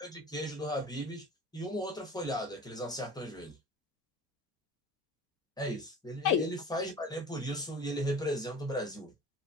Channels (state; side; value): normal; both; correlation 0.39